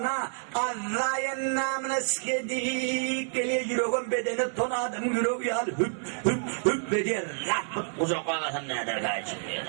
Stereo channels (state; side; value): silent; left; digital silence